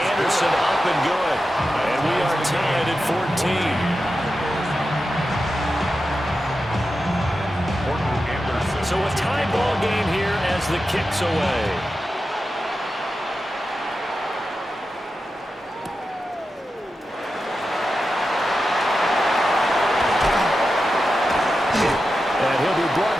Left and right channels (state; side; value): normal; both; correlation 0.91